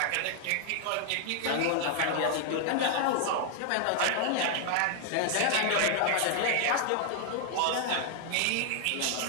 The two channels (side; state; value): both; different; correlation 0.00